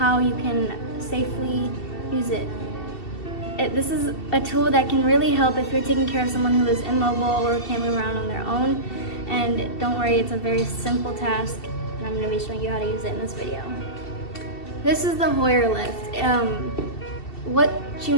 you can safely use it. This is a tool that can really help if you're taking care of someone who is immobile or can't move around on their own. And don't worry, it's a very simple task and I'm going to be showing you how to use it in this video. This is the Hoyer lift. What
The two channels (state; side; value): late; right; 2.7 ms